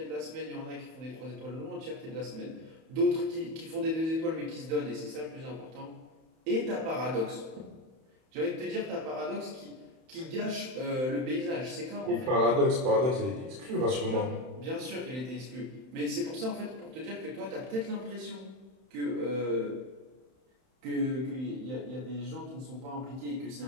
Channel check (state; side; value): late; left; 31 ms